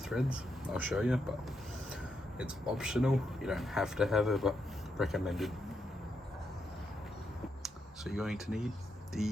I'll show you, but it's optional. You don't have to have it, but recommended. So you're going to need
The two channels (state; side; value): normal; both; correlation 0.82